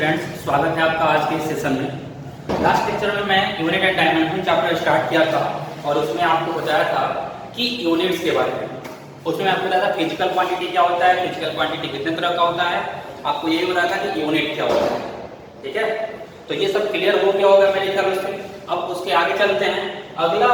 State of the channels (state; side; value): identical; both; correlation 1.00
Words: स्वागत है आपका आज के सेशन में। लास्ट लेक्चर में मैं unit and dimension chapter start किया था और उसमें आपको बताया था कि यूनिट्स के बारे में। उसमें आपको बताया था फिजिकल क्वांटिटी क्या होता है, फिजिकल क्वांटिटी कितने तरह का होता है, आपको यही बताया था कि यूनिट क्या होता है। ठीक है, तो ये सब क्लियर हो गया होगा मेरे ख्याल से। अब उसके आगे चलते हैं। अगला